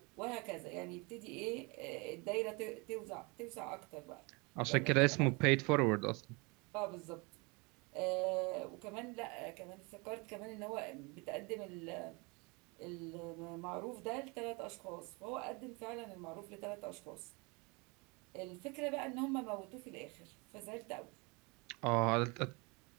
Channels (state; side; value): quieter; left; 28.6 dB